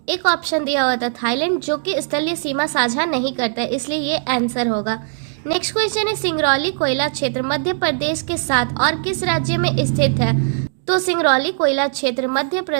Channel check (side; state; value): left; silent; digital silence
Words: एक ऑप्शन दिया हुआ था थाईलैंड, जो कि स्थलीय सीमा साझा नहीं करता है, इसलिए ये आंसर होगा। नेक्स्ट क्वेश्चन है सिंगरौली कोयला क्षेत्र मध्य प्रदेश के साथ और किस राज्य में स्थित है? तो सिंगरौली कोयला क्षेत्र मध्य